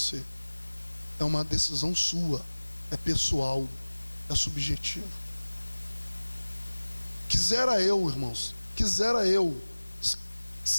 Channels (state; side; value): inverted; both; correlation -1.00